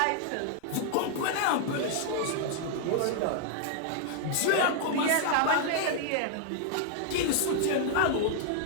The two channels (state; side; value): different; both; correlation -0.01